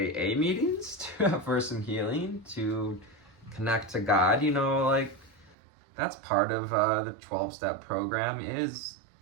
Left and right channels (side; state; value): left; drops out; at 5.6 s